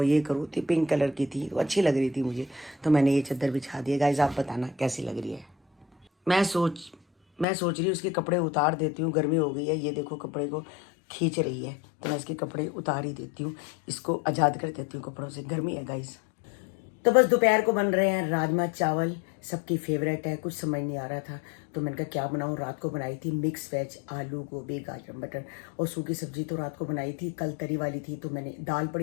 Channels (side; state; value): right; drops out; at 7.5 s